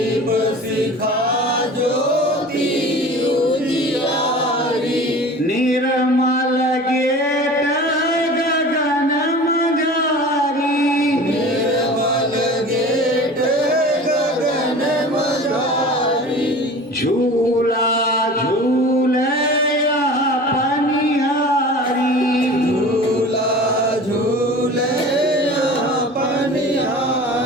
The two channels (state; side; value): normal; both; correlation 0.39